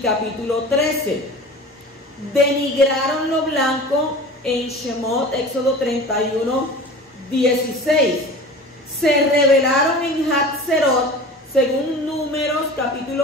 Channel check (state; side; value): normal; both; correlation 0.37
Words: 13. Denigraron lo blanco en Shemot, Éxodo 31, 16. Se rebelaron en Hatzerot, según Números